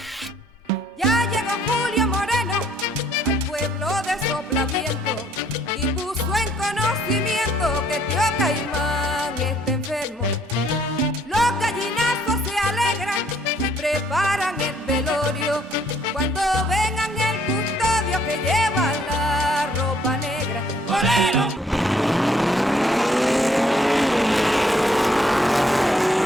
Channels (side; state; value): both; normal; correlation 0.65